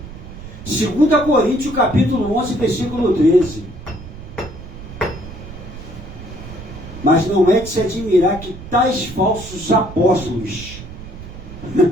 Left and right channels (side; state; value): right; noise; rumble, 13 dB below the sound